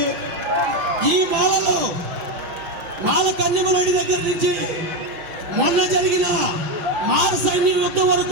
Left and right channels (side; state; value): left; late; 6.2 ms